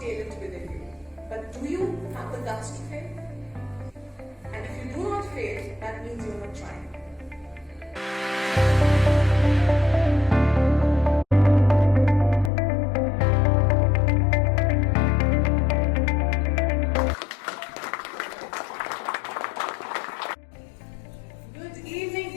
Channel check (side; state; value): right; drops out; at 12.5 s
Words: talent within you. But do you have the guts to fail? And if you do not fail, that means you're not trying. Good evening,